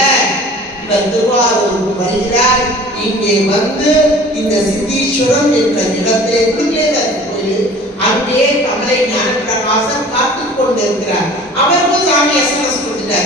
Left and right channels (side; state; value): both; normal; correlation 0.45